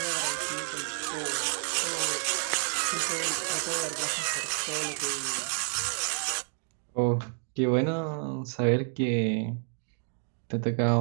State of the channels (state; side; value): silent; left; digital silence